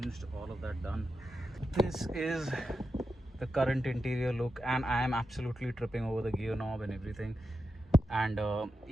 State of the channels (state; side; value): normal; both; correlation 0.89